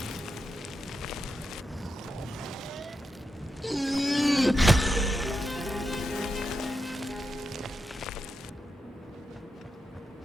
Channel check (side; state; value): both; normal; correlation 0.87